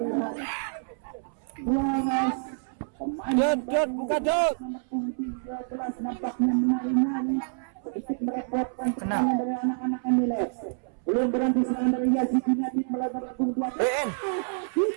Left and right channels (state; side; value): silent; left; 60 dB below the other